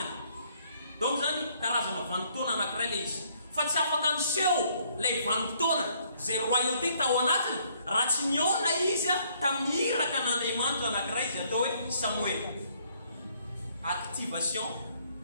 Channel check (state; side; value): inverted; both; correlation -0.66